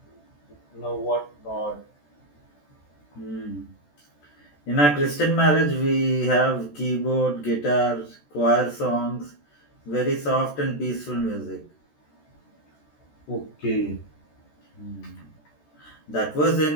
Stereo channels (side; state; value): right; late; 14 ms